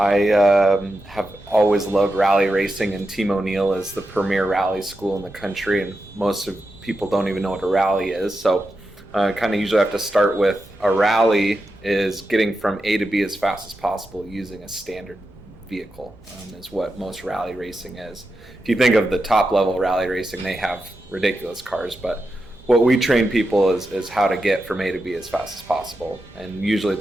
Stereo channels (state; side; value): normal; both; correlation 0.89